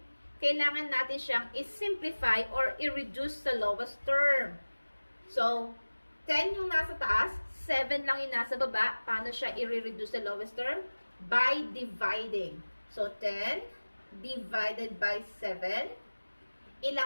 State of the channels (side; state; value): both; inverted; correlation -1.00